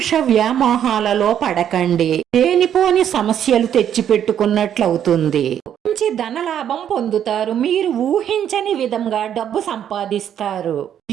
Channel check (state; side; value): quieter; left; 9.7 dB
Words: వ్యామోహాలలో పడకండి. లేనిపోని సమస్యలు తెచ్చిపెట్టుకున్నట్లవుతుంది. మంచి ధనలాభం పొందుతారు. మీరు ఊహించని విధంగా డబ్బు సంపాదిస్తారు.